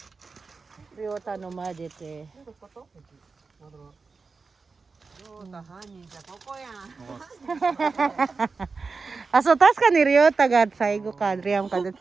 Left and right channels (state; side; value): quieter; left; 4.5 dB